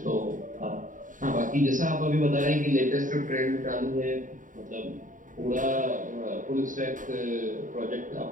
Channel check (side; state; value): left; late; 0.38 ms